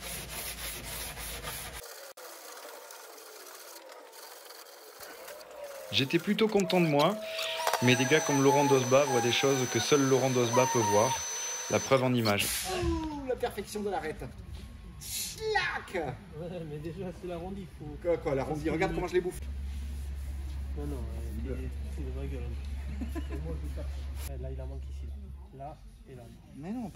J'étais plutôt content de moi, mais des gars comme Laurent Dosba voient des choses que seul Laurent Dosba peut voir. La preuve en image. Ouh, la perfection de l'arête. Schlac. Ouais, mais déjà, c'est l'arrondi. Faut... Quoi, l'arrondi? Regarde comment je les bouffe. Non, c'est de ma gueule. Et moi, je tape. Là, il en manque ici. Là et là. Mais non,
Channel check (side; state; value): both; identical; correlation 1.00